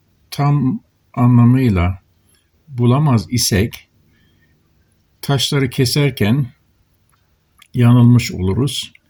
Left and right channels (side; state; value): both; identical; correlation 1.00